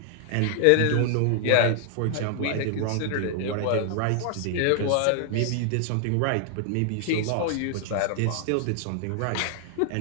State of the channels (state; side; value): different; both; correlation 0.00